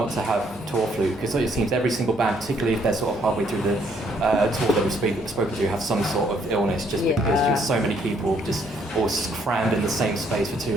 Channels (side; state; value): both; normal; correlation 0.68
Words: to have tour flu, because it seems every single band, particularly if they're sort of halfway through the tour that we've spoken to, have some sort of illness just because just so many people just all crammed in the same space for too